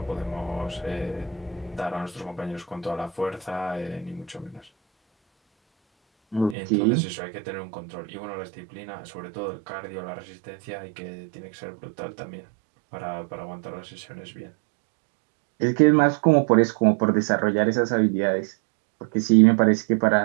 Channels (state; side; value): drops out; left; at 6.6 s